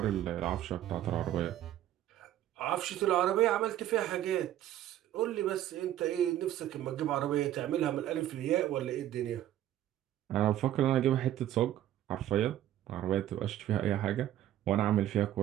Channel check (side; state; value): left; quieter; 12.5 dB